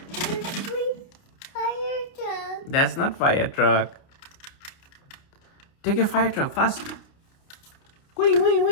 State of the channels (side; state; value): right; late; 29 ms